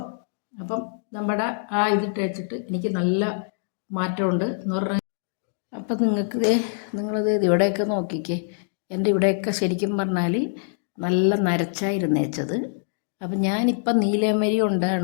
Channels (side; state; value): right; silent; digital silence